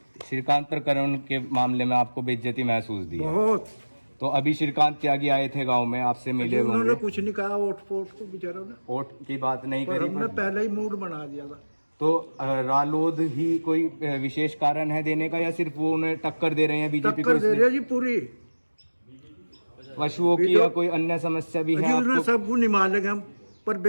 श्रीकांत प्रकरण के मामले में आपको बेइज्जती महसूस दी है? बहुत। तो अभी श्रीकांत त्यागी आए थे गांव में, आपसे मिले उन्होंने होंगे। कुछ नहीं कहा वोट फोट को बेचारों ने, वोट की बात नहीं पर करी, हमने पहले ही मूड बना दिया था। तो रालोद ही कोई विशेष कारण है देने का, या सिर्फ वो उन्हें टक्कर दे रहे हैं बीजेपी को? टक्कर दे रहे जी पूरी। पशुओं की या कोई अन्य समस्या भी है उन्हें आपको? सबको निभा लेंगे हम, पर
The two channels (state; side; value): inverted; both; correlation -1.00